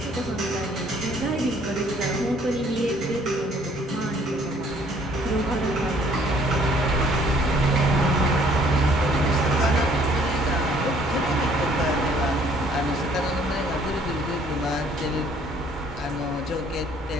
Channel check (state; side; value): normal; both; correlation 0.61